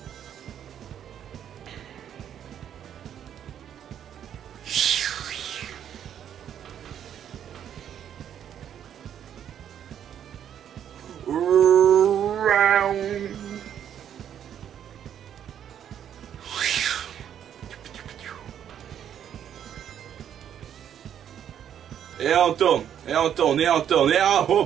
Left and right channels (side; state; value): left; quieter; 9.5 dB